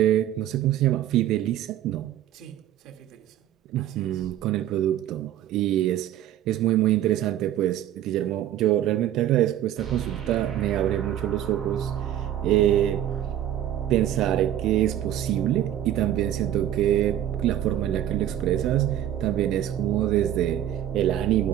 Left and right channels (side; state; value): left; quieter; 11.9 dB